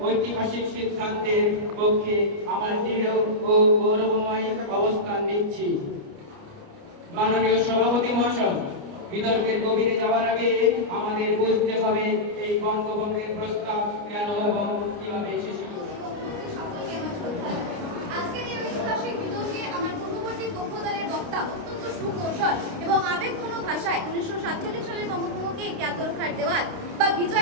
ঐতিহাসিক সিদ্ধান্তের পক্ষে আমার দৃঢ় ও গৌরবময় অবস্থান নিচ্ছি। মাননীয় সভাপতি মহাশয়, বিতর্কের গভীরে যাওয়ার আগে আমাদের বুঝতে হবে এই বঙ্গভঙ্গের প্রস্তাব কেন এবং কিভাবে এসেছিল। আজকের এই ঐতিহাসিক বিতর্কে আমার পূর্ববর্তী পক্ষ দলের বক্তা অত্যন্ত সুকৌশল এবং আবেগঘন ভাষায় 1947 সালের বঙ্গভঙ্গকে একটি আত্মরক্ষার দেওয়াল বা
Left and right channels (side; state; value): left; late; 29 ms